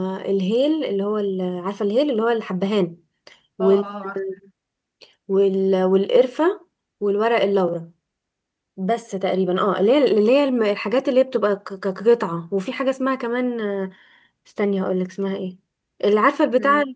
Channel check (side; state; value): both; identical; correlation 1.00